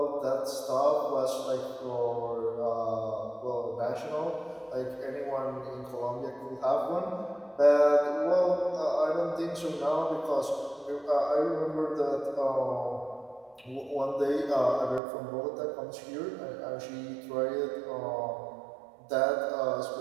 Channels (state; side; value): drops out; left; at 15.0 s